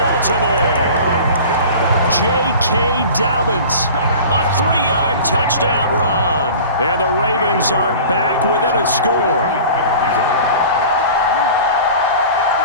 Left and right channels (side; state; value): both; inverted; correlation -0.40